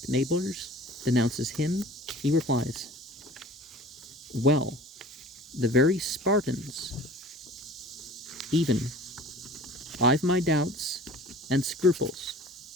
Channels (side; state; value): both; normal; correlation 0.44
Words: neighbors denounces him, he replies, "Well, the very Spartans, even I've my doubts and scruples